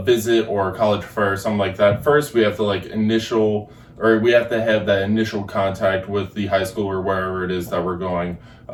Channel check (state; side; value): identical; both; correlation 1.00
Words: visit or a college fair or something like that, first we have to we have to have that initial contact with the high school or wherever it is that we're going.